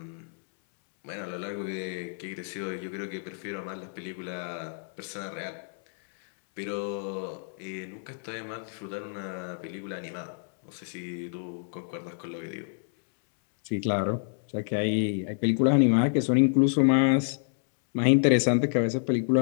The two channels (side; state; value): right; silent; 59 dB below the other